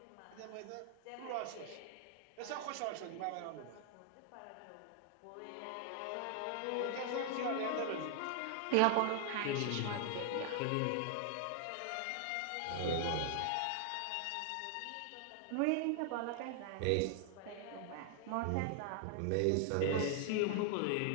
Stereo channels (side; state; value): both; different; correlation 0.00